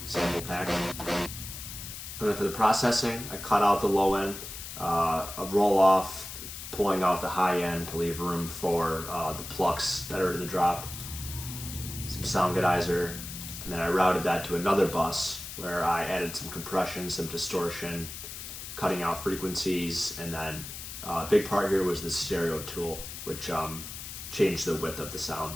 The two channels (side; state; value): left; noise; hiss, 10 dB below the sound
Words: sample pack. And then for the processing, I cut out the low end, a roll off, pulling out the high end to leave room for the plucks that are in the drop, some sound godizer, and then I routed that to another bus where I added some compression, some distortion, cutting out frequencies, and then a big part here was the stereo tool, which changed the width of the sound.